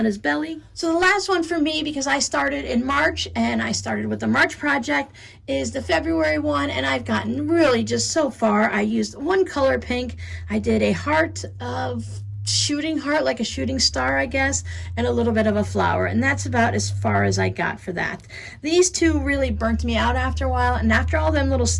his belly. So the last one for me, because I started in March and I started with the March project, is the February one, and I've gotten really just so far. I used one color pink. I did a heart of shooting heart, like a shooting star, I guess, and a little bit of a flower, and that's about as far as I got for that. These two really burnt me out after a while, and after all them little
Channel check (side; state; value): both; identical; correlation 1.00